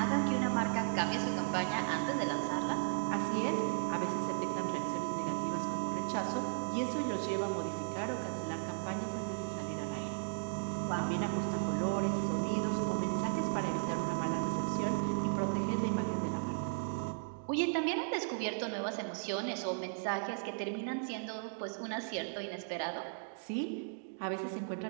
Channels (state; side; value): silent; left; digital silence